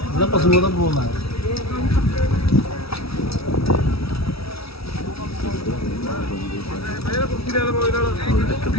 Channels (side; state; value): right; late; 0.76 ms